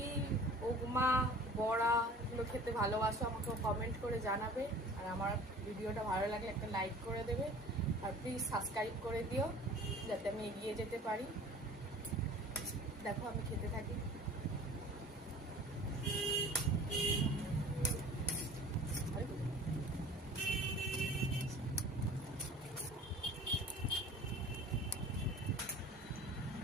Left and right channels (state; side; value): normal; both; correlation 0.45